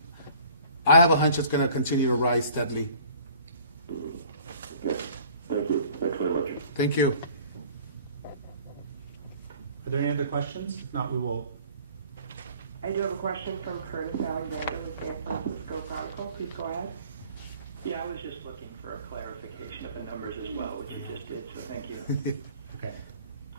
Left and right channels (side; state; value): both; inverted; correlation -0.51